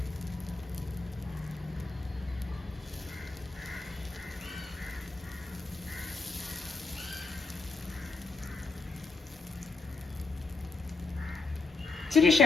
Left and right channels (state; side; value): quieter; right; 3.8 dB